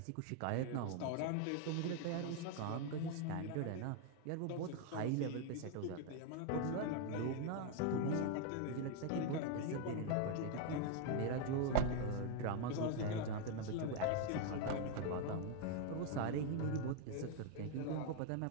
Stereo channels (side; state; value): both; different; correlation 0.01